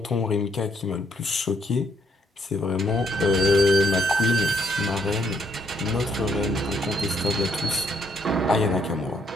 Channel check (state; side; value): normal; both; correlation 0.71